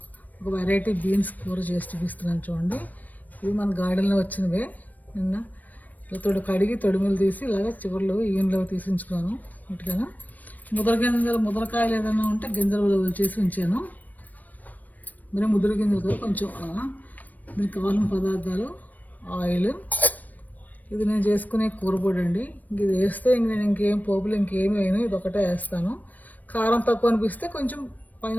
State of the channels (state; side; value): late; right; 0.081 ms